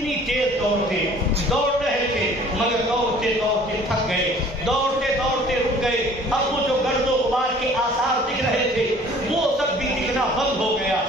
تیز دوڑتے، دوڑ رہے تھے مگر دوڑتے دوڑتے تھک گئے، دوڑتے دوڑتے رک گئے۔ اب وہ جو گرد و غبار کے آثار دکھ رہے تھے وہ سب بھی دکھنا بند ہو گیا،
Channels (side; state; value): both; normal; correlation 0.51